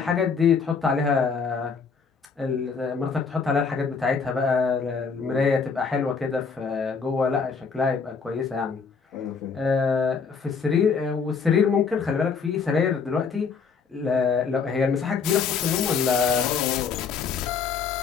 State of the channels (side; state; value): right; quieter; 5.6 dB